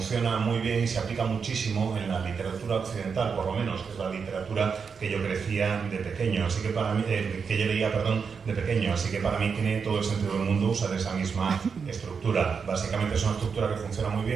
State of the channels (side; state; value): left; quieter; 5.9 dB